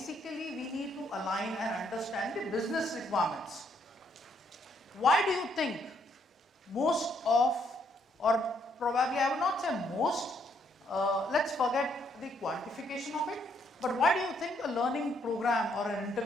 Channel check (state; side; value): normal; both; correlation 0.71